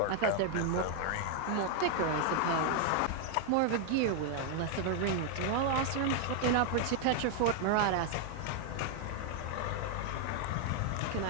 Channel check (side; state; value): both; different; correlation 0.00